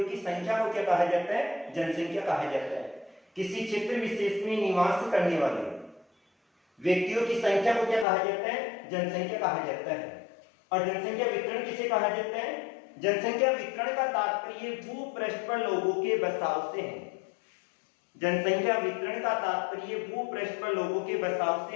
की संख्या को क्या कहा जाता है, जनसंख्या कहा जाता है। किसी क्षेत्र विशेष में निवास करने वाले व्यक्तियों की संख्या को क्या कहा जाता है, जनसंख्या कहा जाता है। और जनसंख्या वितरण किसे कहा जाता है, जनसंख्या वितरण का तात्पर्य भूपृष्ठ पर लोगों के बसाव से है। जनसंख्या वितरण का तात्पर्य भूपृष्ठ पर लोगों के बसाव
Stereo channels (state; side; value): drops out; right; at 8.1 s